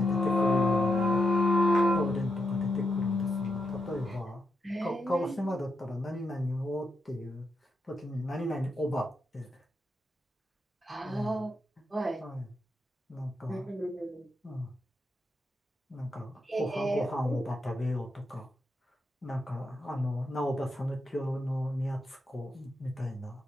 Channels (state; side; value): normal; both; correlation 0.84